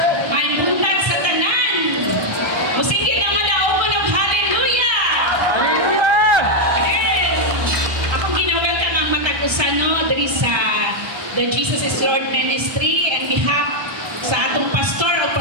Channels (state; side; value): late; left; 1.3 ms